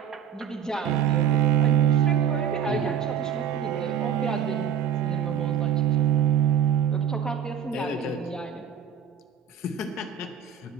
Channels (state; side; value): quieter; left; 8.5 dB